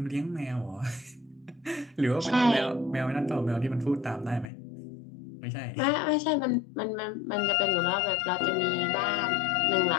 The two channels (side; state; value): right; drops out; at 4.5 s